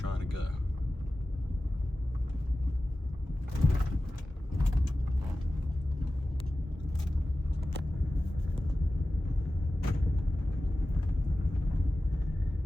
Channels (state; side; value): normal; both; correlation 0.95